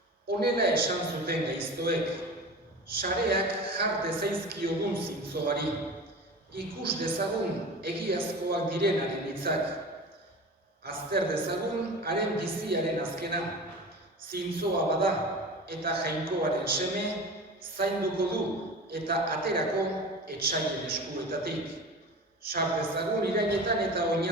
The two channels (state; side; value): normal; both; correlation 0.33